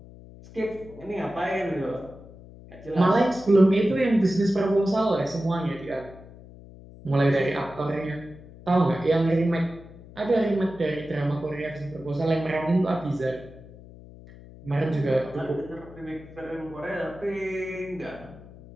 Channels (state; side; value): noise; left; hum, 19 dB below the sound